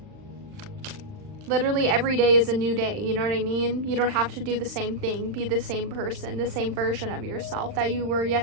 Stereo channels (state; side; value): late; left; 39 ms